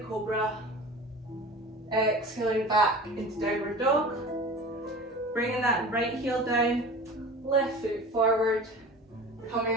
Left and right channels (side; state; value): both; normal; correlation 0.37